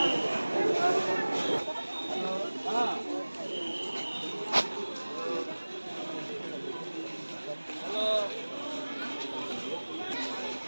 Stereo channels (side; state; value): both; inverted; correlation -1.00